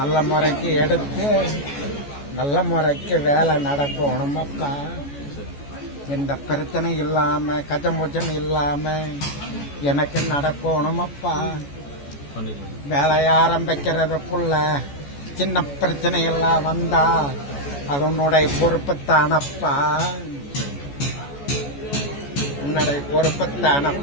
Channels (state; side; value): late; right; 14 ms